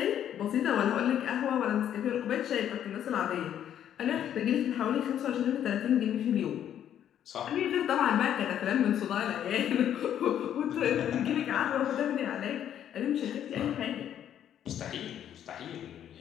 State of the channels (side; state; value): right; quieter; 10.2 dB